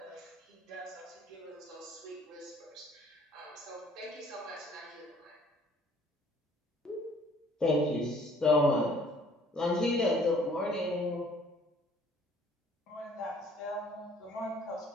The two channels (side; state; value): both; normal; correlation 0.57